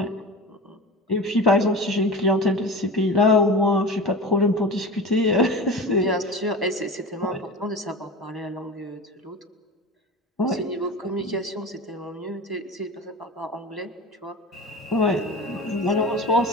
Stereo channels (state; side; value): normal; both; correlation 0.31